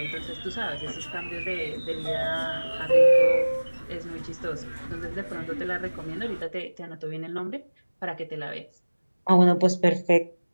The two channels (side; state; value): both; inverted; correlation -1.00